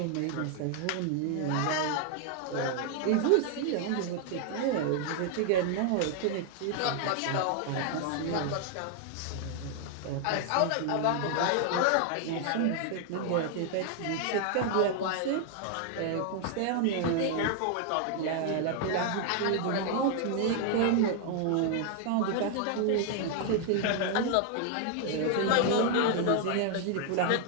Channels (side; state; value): both; different; correlation 0.00